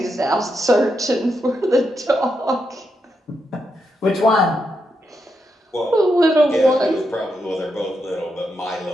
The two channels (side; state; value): both; normal; correlation 0.83